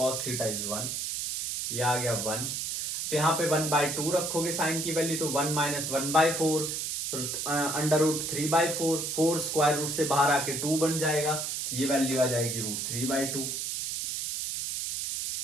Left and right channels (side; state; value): right; noise; hiss, 3 dB below the sound